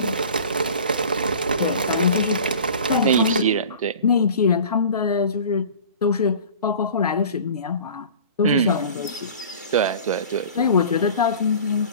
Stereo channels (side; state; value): both; inverted; correlation -0.41